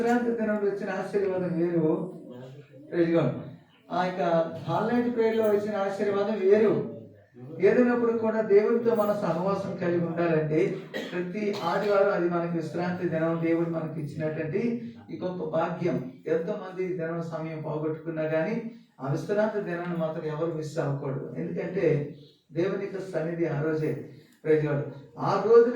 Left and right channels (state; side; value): identical; both; correlation 1.00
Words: దినం వచ్చిన ఆశీర్వాదం వేరు. ప్రైజ్ ఆ యొక్క హాల్ నైట్ ప్రేయర్ లో వచ్చిన ఆశీర్వాదం వేరు. ఏదైనప్పుడు కూడా దేవుడితో మన సహవాసం కలిగి ఉండాలంటే ప్రతి ఆదివారం అది మనకి విశ్రాంతి దినం దేవుడు మనకి ఇచ్చినటువంటి ఈ గొప్ప భాగ్యం. ఎంతో మంది దినం సమయం పోగొట్టుకున్నా కానీ ఆ విశ్రాంతి దినాన్ని మాత్రం ఎవరు మిస్ అవ్వకూడదు. ఎందుకంటే దేవుని యొక్క సన్నిధి ఆ రోజే. ప్రైజ్గాడు ఆ రోజు